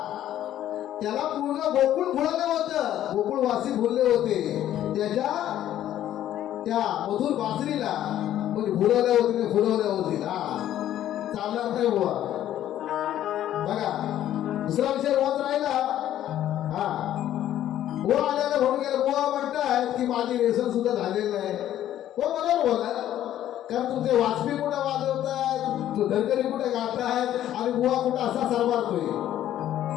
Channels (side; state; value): right; quieter; 12.0 dB